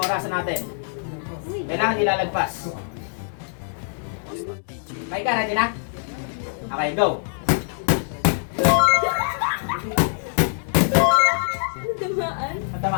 natin. Kailangan ilalagpas. Okay ka, ready na? Okay, go! Tamaan.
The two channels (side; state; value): right; silent; 62 dB below the other